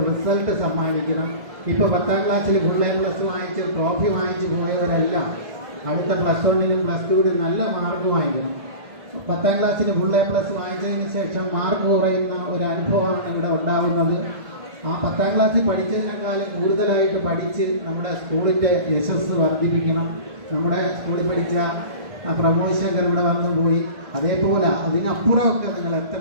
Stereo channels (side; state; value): left; late; 1.7 ms